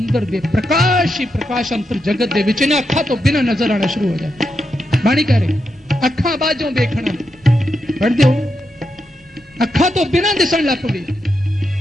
दे प्रकाश ही प्रकाश अंतर जगत दे विच ने अखा तो बिना नजर आना शुरू हो जाए। बाणी कह रहे अखा बाजों देखना पढ़ दो, अखा तो बिना दिसन लग पई।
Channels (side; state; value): both; normal; correlation 0.85